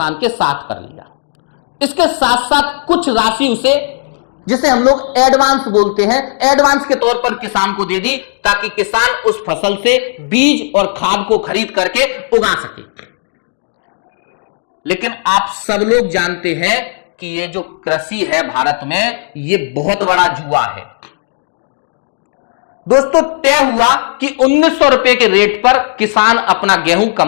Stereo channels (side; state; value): right; silent; digital silence